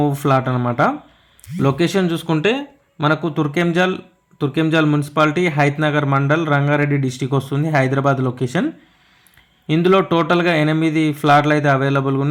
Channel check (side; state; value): both; identical; correlation 1.00